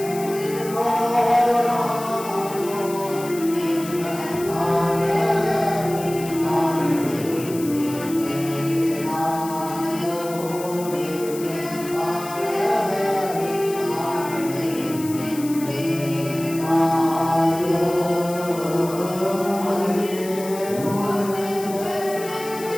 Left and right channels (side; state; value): left; noise; hiss, 14 dB below the sound